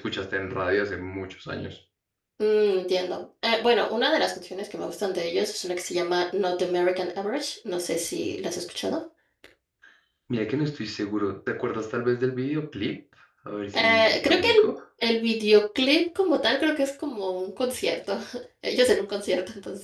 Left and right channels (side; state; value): both; identical; correlation 1.00